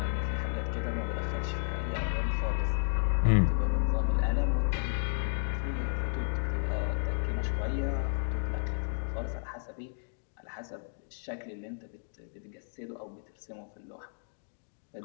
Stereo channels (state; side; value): silent; right; digital silence